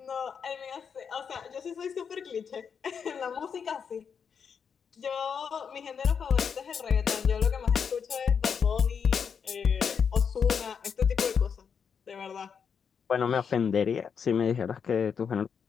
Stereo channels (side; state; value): right; quieter; 6.7 dB